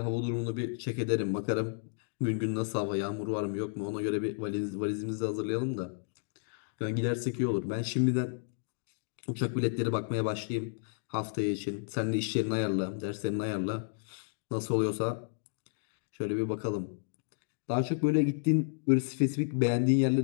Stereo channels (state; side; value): silent; right; digital silence